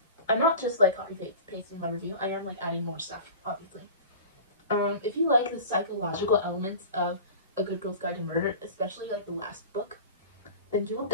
I'm not just like copy-pasting my review, I am like adding more stuff, obviously. If you like the psychological elements of A Good Girl's Guide to Murder, especially like the last book, then you will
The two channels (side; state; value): both; inverted; correlation -0.36